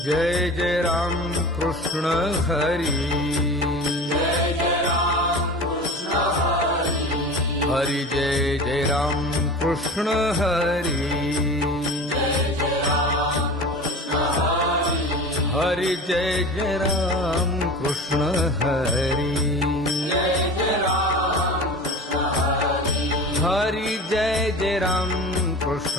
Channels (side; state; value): both; normal; correlation 0.35